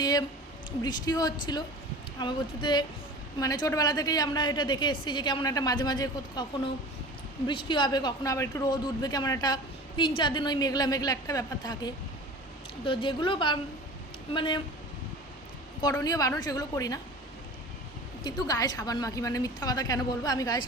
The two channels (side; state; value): both; normal; correlation 0.38